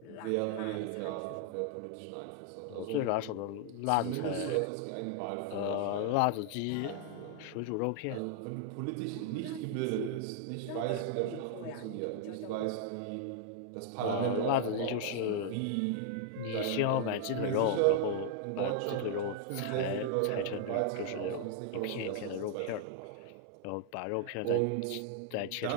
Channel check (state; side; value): different; both; correlation 0.00